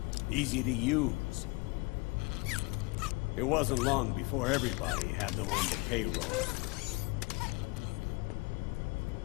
easy to use. It wasn't long before everybody had them on the payroll.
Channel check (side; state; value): right; quieter; 26.2 dB